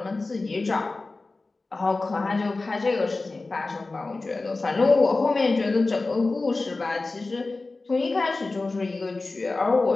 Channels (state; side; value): quieter; right; 3.4 dB